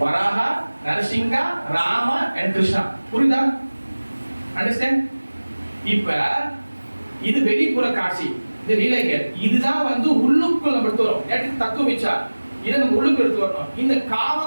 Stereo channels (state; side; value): inverted; both; correlation -1.00